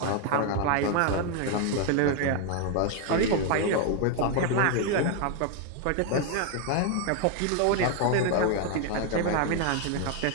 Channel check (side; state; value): both; different; correlation 0.00